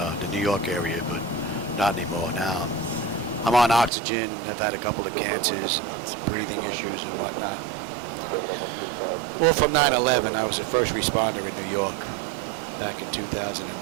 New York area, but not anymore now. I'm on oxygen. I've had a couple of cancers, some breathing issues and whatnot. Well, from 9/11, I was a first responder in New York back in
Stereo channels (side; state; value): left; drops out; at 3.9 s